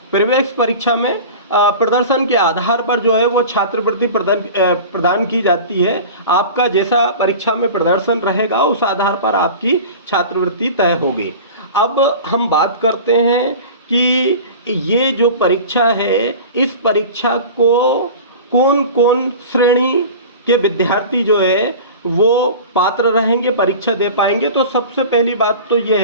प्रवेश परीक्षा में प्रदर्शन के आधार पर जो है वो छात्रवृत्ति प्रदान की जाती है। आपका जैसा परीक्षा में प्रदर्शन रहेगा उस आधार पर आपकी छात्रवृत्ति तय होगी। अब हम बात करते हैं कि ये जो परीक्षा है इस परीक्षा को कौन कौन श्रेणी के विद्यार्थी जो है वो पात्र रहेंगे, परीक्षा दे पाएंगे। तो सबसे पहली बात तो ये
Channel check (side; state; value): both; inverted; correlation -0.36